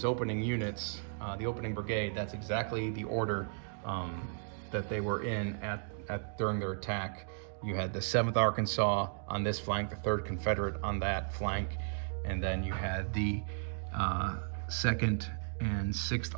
opening units, the opening brigade, that's exactly the order that they were in at during their attack. You had the 7th Arkansas on this flank, the 3rd Confederate on that flank, and then you had the 2nd and 6th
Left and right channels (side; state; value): left; silent; digital silence